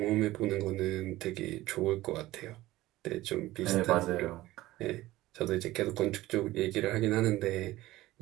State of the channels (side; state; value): left; quieter; 17.0 dB